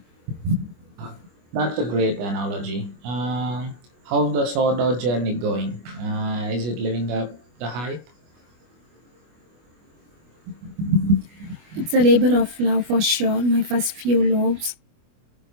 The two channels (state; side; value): late; left; 25 ms